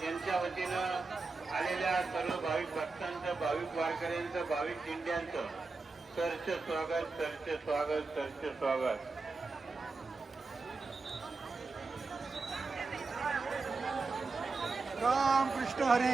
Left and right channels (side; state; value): left; quieter; 4.0 dB